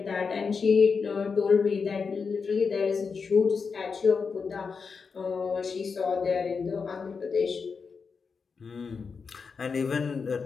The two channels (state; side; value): quieter; right; 5.3 dB